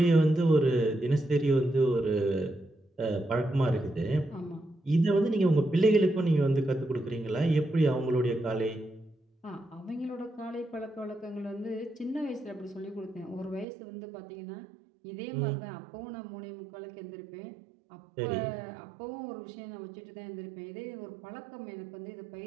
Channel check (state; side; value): drops out; left; at 13.7 s